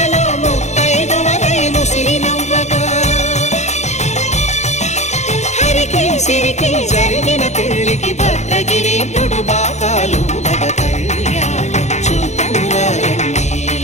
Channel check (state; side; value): late; right; 0.33 ms